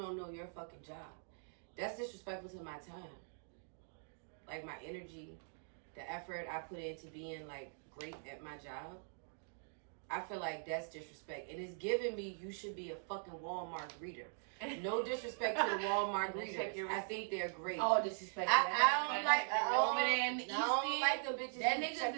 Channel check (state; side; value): silent; left; digital silence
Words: know your fucking job. That's disrespectful to my time. Like my energy, the effort I put into being like great at my job. I feel like that's disrespect. And it's giving me you should be a fucking Walmart greeter. No disrespect to the Walmart greeters. I think they're great. All disrespect. I don't like I don't like them bitches that who